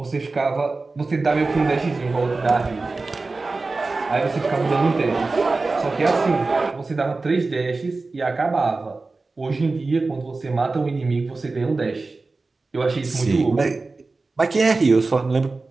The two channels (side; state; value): left; quieter; 3.6 dB